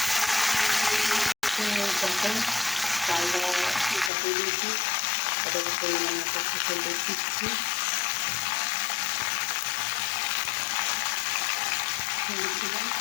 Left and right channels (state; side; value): drops out; right; at 4.1 s